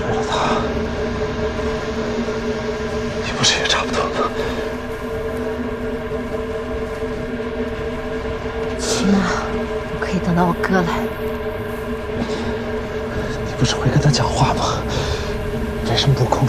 了他。你不是也差不多吗？起码我可以等到我哥来。你不是会跟他讲话吗？为什么不控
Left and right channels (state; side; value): identical; both; correlation 1.00